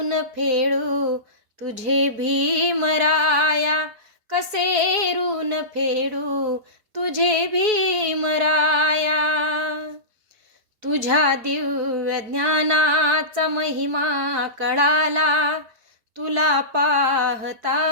फेडू तुझे भीमराया, कसे ऋण फेडू तुझे भीमराया. तुझ्या दिव्य ज्ञानाचा महिमा कळाला, तुला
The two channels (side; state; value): left; late; 4.7 ms